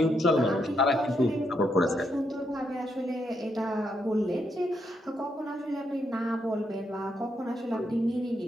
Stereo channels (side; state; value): both; normal; correlation 0.79